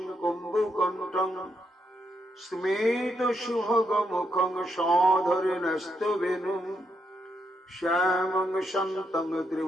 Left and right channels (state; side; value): normal; both; correlation 0.79